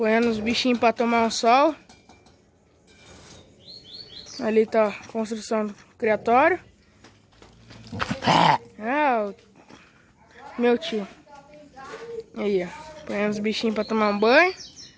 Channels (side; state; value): both; identical; correlation 1.00